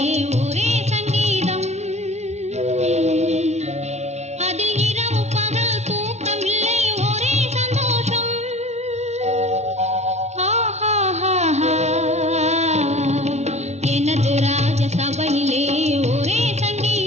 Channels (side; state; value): left; late; 0.32 ms